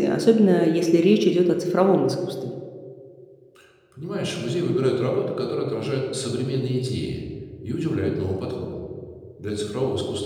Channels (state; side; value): identical; both; correlation 1.00